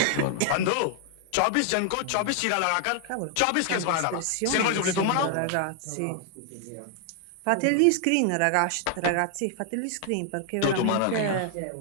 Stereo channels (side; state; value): both; different; correlation 0.00